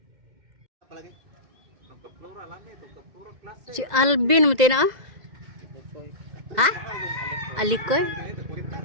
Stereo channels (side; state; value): left; late; 2.0 ms